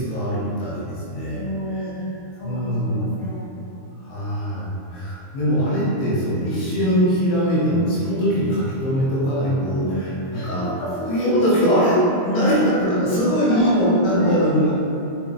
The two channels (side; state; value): right; late; 22 ms